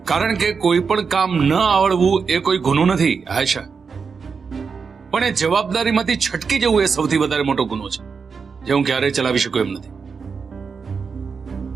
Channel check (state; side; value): quieter; left; 5.5 dB